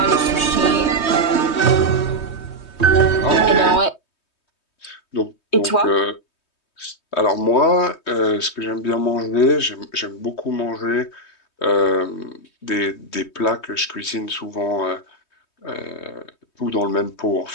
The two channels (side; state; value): right; late; 3.2 ms